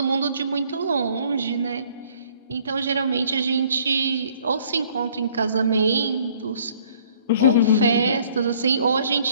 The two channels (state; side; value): inverted; both; correlation -0.59